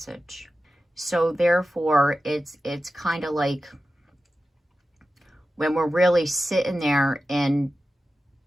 So therefore, it's kind of like when we're really sitting there and,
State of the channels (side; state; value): both; normal; correlation 0.93